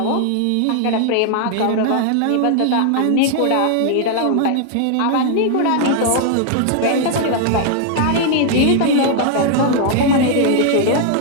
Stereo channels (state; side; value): different; both; correlation 0.00